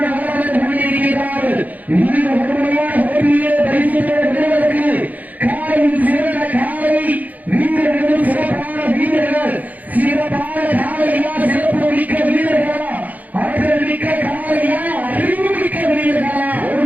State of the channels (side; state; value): left; late; 0.078 ms